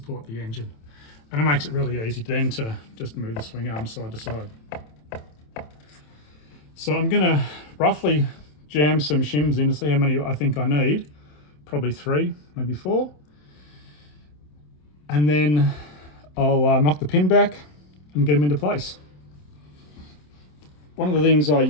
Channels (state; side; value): late; right; 27 ms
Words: the engine. And it makes it really easy then to just move the swing arm side to side. So I'm going to roughly jam some shims in to see how many I think I need. Probably 3, maybe 4. And then I'll knock the pin back and get them into place. One of the things I